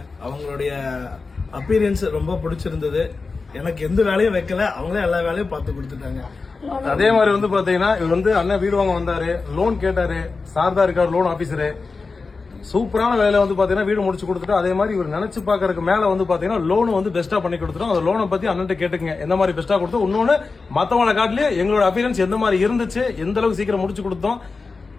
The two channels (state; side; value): quieter; right; 4.2 dB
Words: அவங்களுடைய அப்பீரியன்ஸ் ரொம்ப பிடிச்சிருந்தது. எனக்கு எந்த வேலையும் வைக்கல, அவங்களே எல்லா வேலையும் பார்த்து கொடுத்துட்டாங்க. அதே மாதிரி பாத்தீங்கன்னா இவர் அண்ணன் வீடு வாங்க வந்தாரு, லோன் கேட்டாரு, சார் தான் இருக்காரு லோன் ஆபீசரு. சூப்பரான வேலை பாத்தீங்கன்னா வீடு முடிச்சு கொடுத்துட்டு, அதே மாதிரி இவர் நினைச்சு பாக்குறதுக்கு மேல பாத்தீங்கன்னா லோன் பெஸ்டா பண்ணி கொடுத்துரும். அந்த லோனை பத்தி அண்ணன் கேட்டுங்க, எந்த மாதிரி பெஸ்டா கொடுத்தோம், இன்னொன்னு மத்தவங்களை காட்டிலேயே எங்களோட அப்பீரன்ஸ் எந்த மாதிரி இருந்துச்சு, எந்த அளவுக்கு சீக்கிரம் முடிச்சு கொடுத்தோம்,